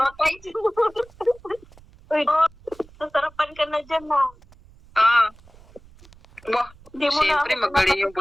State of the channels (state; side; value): noise; right; rumble, 25 dB below the sound